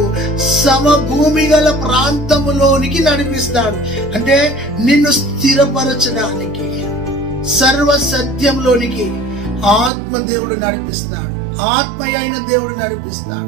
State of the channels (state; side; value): drops out; left; at 9.9 s